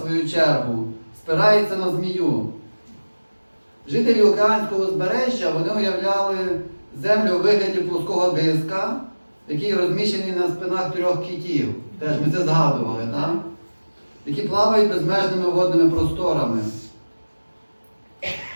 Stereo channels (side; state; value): both; inverted; correlation -1.00